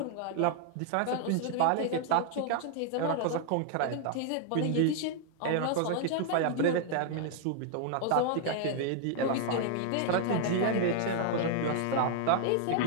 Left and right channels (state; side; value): different; both; correlation 0.00